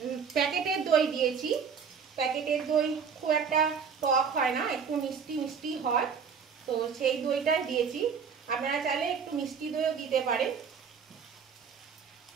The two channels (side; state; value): left; quieter; 6.4 dB